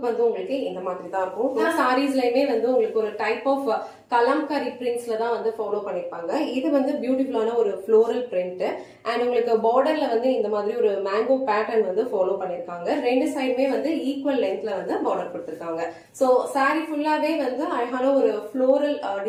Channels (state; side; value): identical; both; correlation 1.00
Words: வந்து உங்களுக்கு இந்த மாதிரி தான் இருக்கும். எல்லா சாரீஸ்லயுமே வந்து உங்களுக்கு ஒரு டைப் ஆஃப் கலம்கரி பிரிண்ட்ஸ்ல தான் வந்து ஃபாலோ பண்ணிருப்பாங்க. இது வந்து பியூட்டிஃபுல்லான ஒரு ஃப்ளோரல் பிரிண்ட் அண்ட் உங்களுக்கு பார்டர்ல வந்து இந்த மாதிரி ஒரு மேங்கோ பேட்டர்ன் வந்து ஃபாலோ பண்ணிருக்காங்க. ரெண்டு சைடுமே வந்து ஈக்குவல் லென்த்ல வந்து பார்டர் கொடுத்திருக்காங்க. சோ சாரி ஃபுல்லாவே வந்து அழகான ஒரு ஃப்ளோரல்